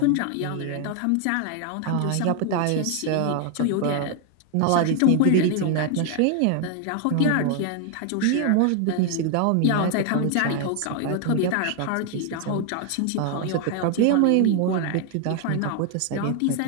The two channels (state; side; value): different; both; correlation 0.01